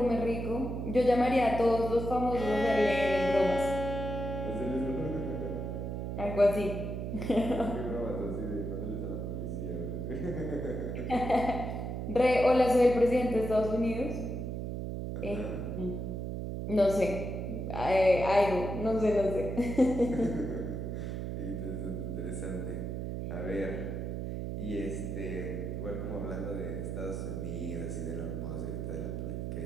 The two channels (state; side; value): noise; right; hum, 4 dB below the sound